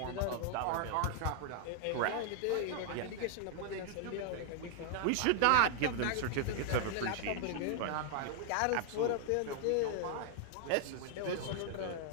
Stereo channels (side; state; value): both; different; correlation 0.00